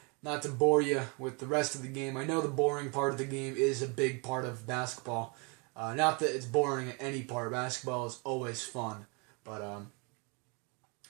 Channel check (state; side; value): quieter; left; 32.1 dB